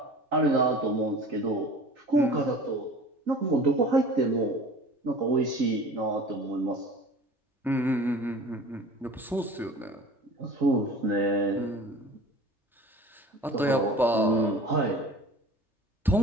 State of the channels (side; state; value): both; normal; correlation 0.41